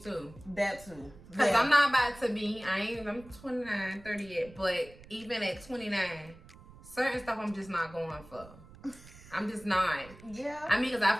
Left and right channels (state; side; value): noise; right; rumble, 20 dB below the sound